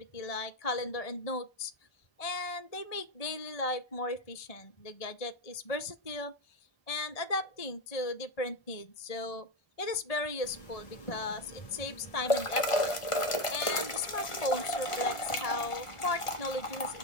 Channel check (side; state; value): right; late; 1.4 ms